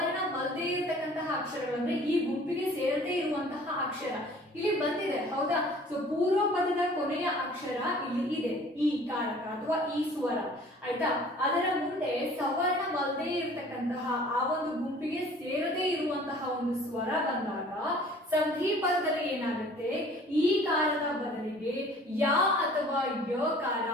ಇರತಕ್ಕಂತಹ ಅಕ್ಷರಗಳು ಅಂದ್ರೆ ಈ ಗುಂಪಿಗೆ ಸೇರದೇ ಇರುವಂತಹ ಅಕ್ಷರ ಇಲ್ಲಿ ಬಂದಿದೆ, ಹೌದಾ? ಸೊ ಪೂರ್ವ ಪದದ ಕೊನೆಯ ಅಕ್ಷರ ಇಲ್ಲಿ ಇದೆ, ಈ ಕಾರಕ ಅಥವಾ ಈ ಸ್ವರ, ಆಯ್ತಾ? ಅದರ ಮುಂದೆ ಸವರ್ಣವಲ್ಲದೆ ಇರತಕ್ಕಂತಹ ಆ ಒಂದು ಗುಂಪಿಗೆ ಸೇರದೇ ಇರುವಂತಹ ಒಂದು ಸ್ವರ ಬಂದಾಗ ಸಂಧಿ ಪದದಲ್ಲಿ ಏನಾಗುತ್ತೆ? ಈ ಕಾರದ ಬದಲಿಗೆ ಯ ಅಥವಾ ಯ ಕಾರ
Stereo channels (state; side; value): normal; both; correlation 0.50